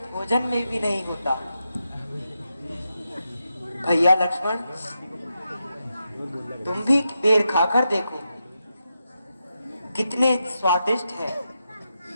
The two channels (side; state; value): both; inverted; correlation -0.86